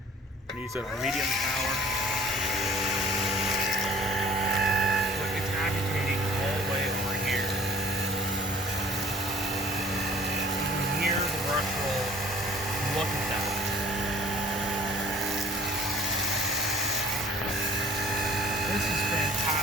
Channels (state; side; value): normal; both; correlation 0.52